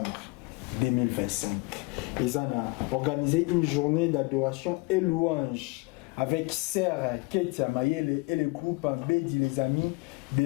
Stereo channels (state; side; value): quieter; right; 25.5 dB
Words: 2025. Ils ont organisé une journée d'adoration et louange avec Sœur Ketia Mayele et le groupe Bédi les Amis de